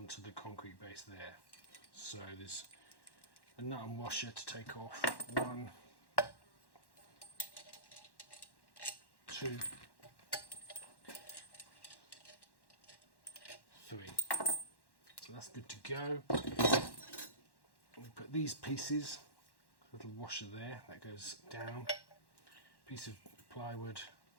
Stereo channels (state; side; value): late; right; 1.1 ms